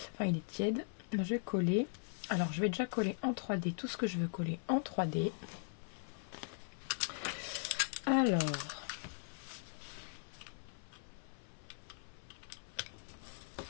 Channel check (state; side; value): silent; right; 51 dB below the other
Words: Enfin, il est tiède. Je vais coller. Alors, je vais déjà coller en 3D tout ce que je veux coller en 3D. Alors,